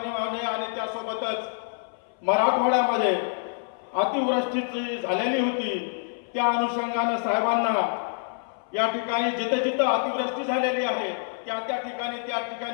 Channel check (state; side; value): silent; right; 58 dB below the other